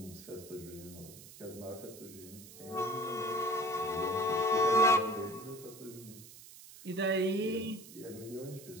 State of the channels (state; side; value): noise; right; hiss, 17 dB below the sound